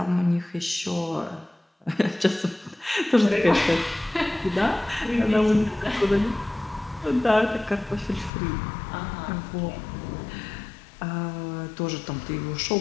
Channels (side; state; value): right; drops out; at 8.3 s